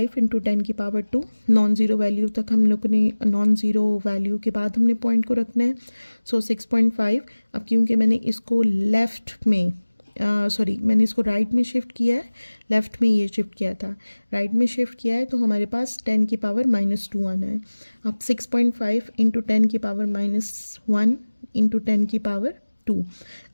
इंटू 10 की पावर 2। नॉन ज़ीरो वैल्यू तक हम लोग ने, नॉन ज़ीरो वैल्यू के बाद हमने पॉइंट को रखना है। सो 6.5। अब क्योंकि मैंने इसको मैंने इसको राइट में शिफ्ट किया है, लेफ़्ट में ये शिफ्ट किया था, राइट में शिफ्ट किया है, तो हमारे पास 10 की पावर -2 आना है। अब 6.5 इंटू 10 की पावर -1 इंटू 10 की पावर 2।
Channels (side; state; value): both; inverted; correlation -1.00